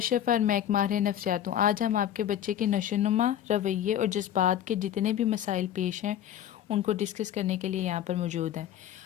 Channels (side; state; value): right; quieter; 10.7 dB